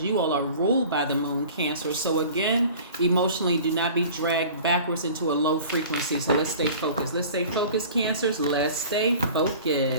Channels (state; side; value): inverted; both; correlation -0.43